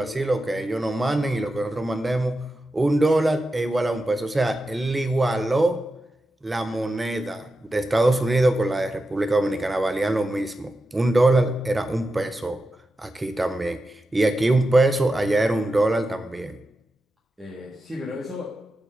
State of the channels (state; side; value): normal; both; correlation 0.90